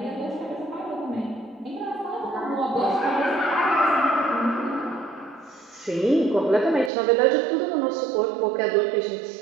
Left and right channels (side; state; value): left; drops out; at 6.9 s